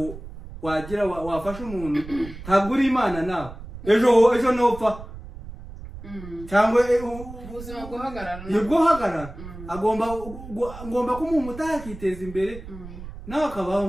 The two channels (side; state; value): right; noise; rumble, 14 dB below the sound